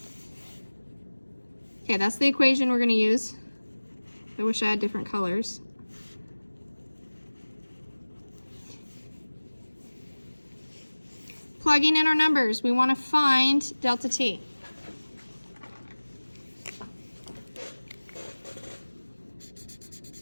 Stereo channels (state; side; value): inverted; both; correlation -1.00